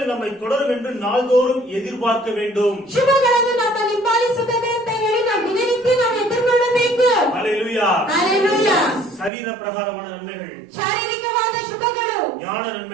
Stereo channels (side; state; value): left; drops out; at 9.3 s